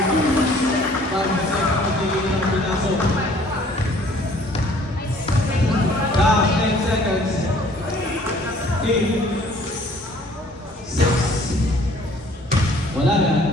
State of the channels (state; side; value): normal; both; correlation 0.56